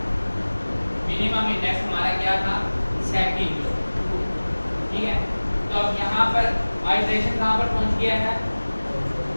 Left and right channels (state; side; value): inverted; both; correlation -1.00